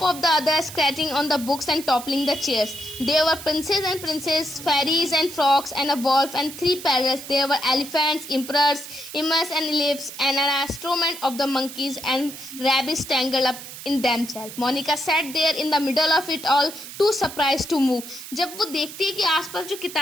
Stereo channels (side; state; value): right; noise; hiss, 12 dB below the sound